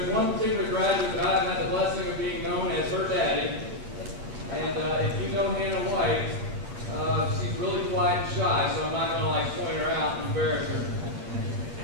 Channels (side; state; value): left; late; 9.0 ms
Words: one particular graduate that I've had the blessing of being known as her daddy. And if you know Hannah White, she's really quiet and shy, so I'm not going to point her out and embarrass her.